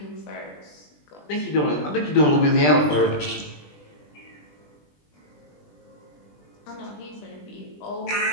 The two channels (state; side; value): late; right; 20 ms